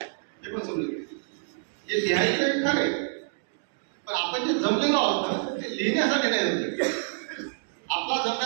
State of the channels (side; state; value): left; silent; 60 dB below the other